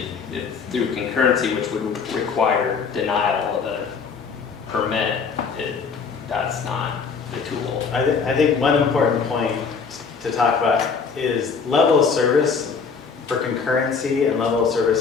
through concurrency, which would require denial of a permit. That's not the tool. I think one important point to talk about is level of service for concurrency and level of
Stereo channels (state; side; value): quieter; right; 5.5 dB